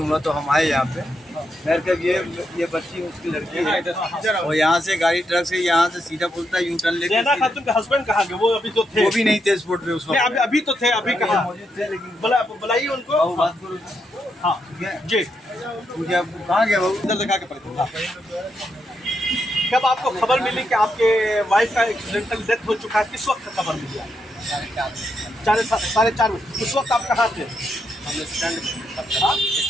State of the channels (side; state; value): both; normal; correlation 0.81